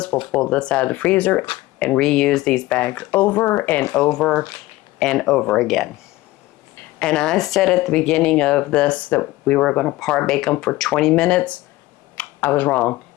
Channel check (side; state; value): right; quieter; 18.2 dB